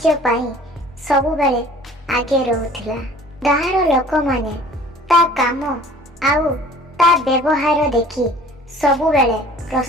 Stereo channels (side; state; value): both; normal; correlation 0.49